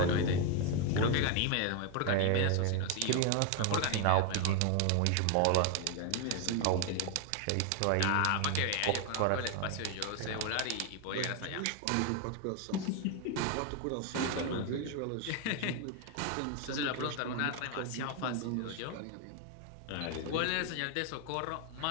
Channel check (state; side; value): different; both; correlation 0.01